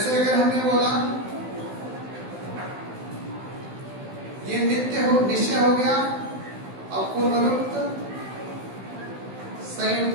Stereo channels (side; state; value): left; late; 16 ms